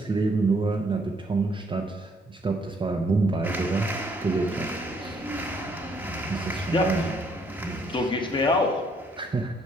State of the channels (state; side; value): normal; both; correlation 0.68